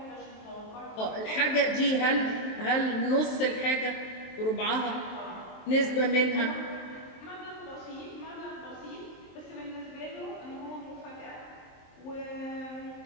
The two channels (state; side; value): late; right; 23 ms